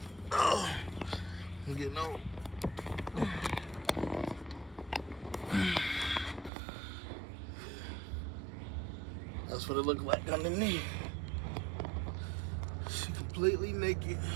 Oh, I'm getting old. That's what it looked like underneath. She completely naked.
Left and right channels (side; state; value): left; drops out; at 6.5 s